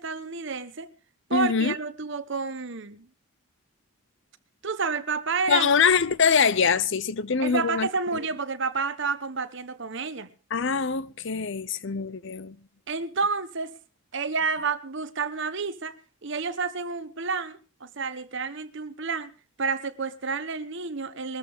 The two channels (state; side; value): normal; both; correlation -0.18